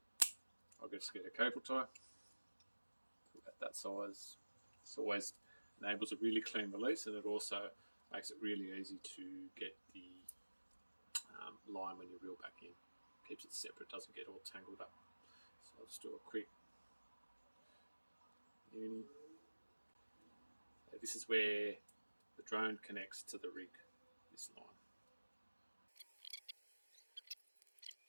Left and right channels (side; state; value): both; inverted; correlation -1.00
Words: I'll just get a cable tie, at that size. This always enables a really clean release, and it also makes it really easy to get the line when you reel back in. Keeps it separate, doesn't get all tangled up. So I'll just do a quick uni. This is where the drone connects to the rig, this line.